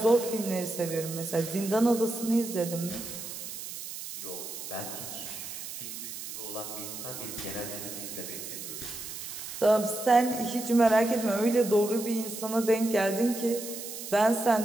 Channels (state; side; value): noise; right; hiss, 9 dB below the sound